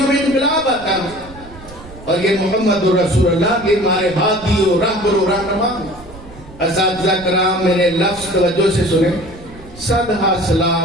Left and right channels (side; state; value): right; noise; rumble, 18 dB below the sound